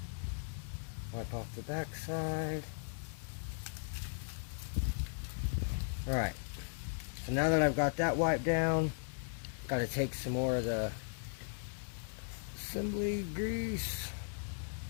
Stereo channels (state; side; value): silent; right; digital silence